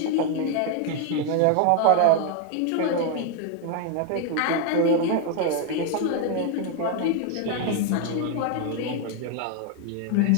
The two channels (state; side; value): different; both; correlation 0.01